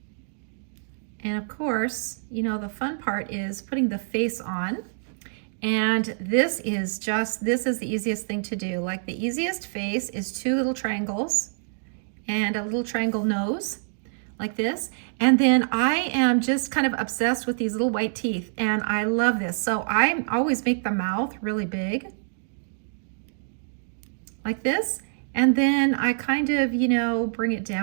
And of course, you know, the fun part is putting the face on. And this is the easiest thing to do. Like the easiest face is 2 little triangles and a little triangle nose like this. And then I am just kind of obsessed with these little white teeth and I love this. So I always make the mouth really big like this. And then I kind of, you know, bring it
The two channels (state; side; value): silent; left; digital silence